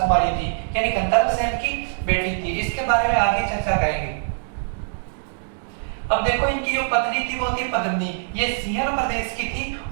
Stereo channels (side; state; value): left; silent; digital silence